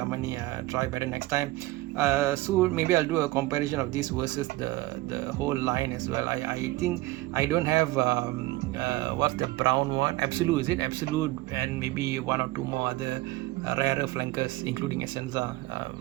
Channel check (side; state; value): left; quieter; 18.9 dB